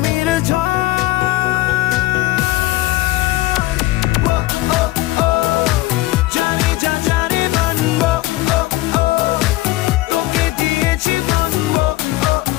ঝড়। জানি যা জানি মানবো, তোকে দিয়েছি মানবো,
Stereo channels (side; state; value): right; quieter; 18.3 dB